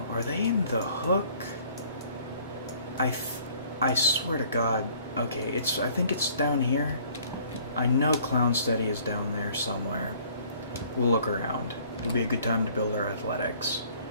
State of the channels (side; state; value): both; inverted; correlation -0.57